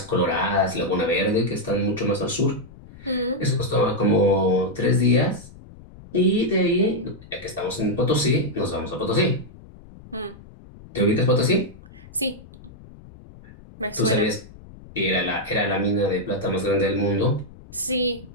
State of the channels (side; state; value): left; noise; rumble, 20 dB below the sound